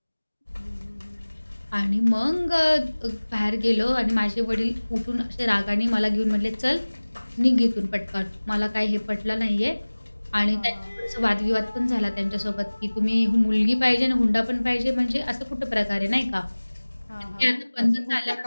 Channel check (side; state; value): both; inverted; correlation -1.00